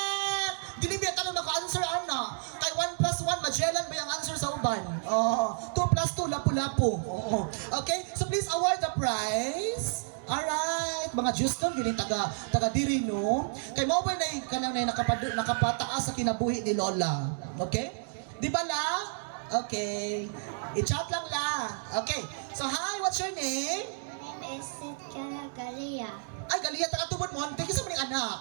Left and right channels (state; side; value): silent; left; digital silence